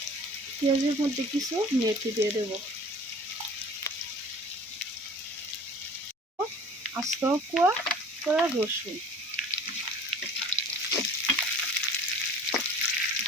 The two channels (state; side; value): normal; both; correlation 0.46